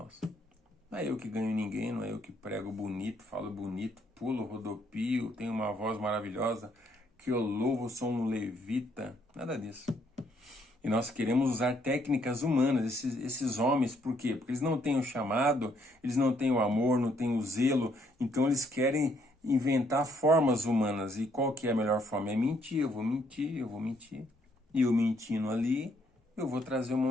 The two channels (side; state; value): both; normal; correlation 0.70